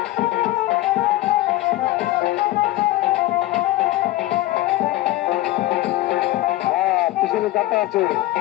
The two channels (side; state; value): right; quieter; 16.8 dB